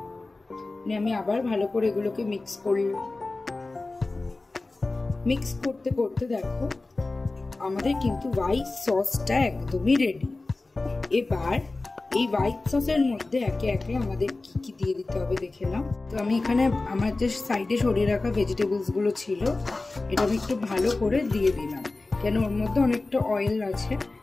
আমি আবার ভালো করে এগুলোকে মিক্স করলাম। মিক্স করতে করতে দেখো আমাদের কিন্তু হোয়াইট সসটা একদমই রেডি। এবার এই হোয়াইট সসের মধ্যে একে একে আমাদের কি কি দিয়ে দিতে হবে দেখে নাও। তো আমি এখানে আমার যে সাইডে সরিয়ে রাখা ভেজিটেবলস গুলো ছিল এটা আমি একটু ভালো করে দিয়ে দিলাম, কেন ওর মধ্যে অনেকটা অয়েল আছে,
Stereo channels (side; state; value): right; quieter; 3.3 dB